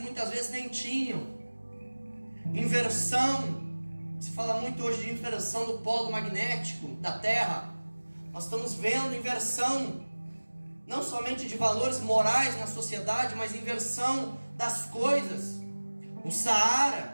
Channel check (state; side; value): inverted; both; correlation -1.00